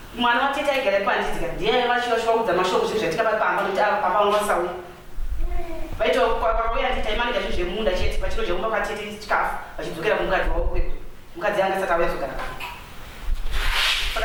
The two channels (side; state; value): both; identical; correlation 1.00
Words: mwana watete aigara ipanditika ndiye vachivachivaudza mashoko zvinhu zvaitika pamba kuti papa vangasauya vaitokauya nditaimanika zvinhu zvemunda chete pachino chekumba kwatete chikafu vachidzokera kumukadzi wavo kwedu mukadzi anga saka auya kuzogara